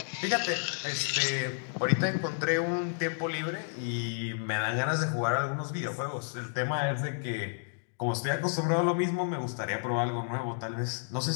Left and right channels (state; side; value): silent; right; digital silence